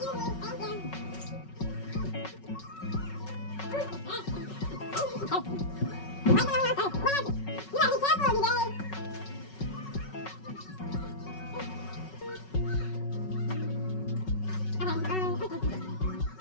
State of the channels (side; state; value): right; late; 5.4 ms